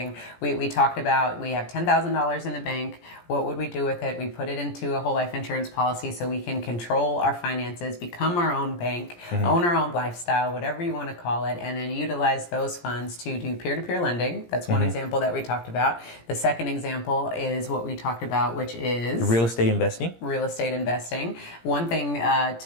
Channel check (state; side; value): late; right; 17 ms